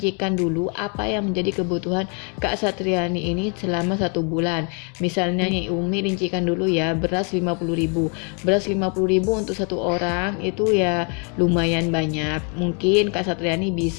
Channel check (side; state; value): right; quieter; 37.3 dB